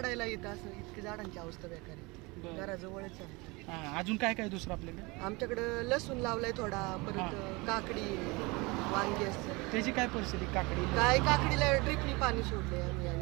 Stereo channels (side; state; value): left; quieter; 25.4 dB